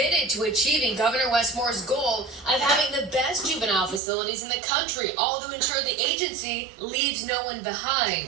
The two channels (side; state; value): left; drops out; at 4.0 s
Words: to achieving Governor Wes Moore's goal of having the best juvenile facilities in the country, all to ensure the agency leaves no one